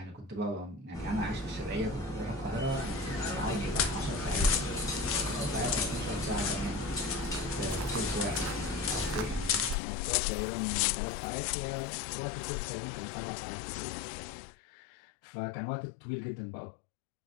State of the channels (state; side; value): drops out; right; at 9.8 s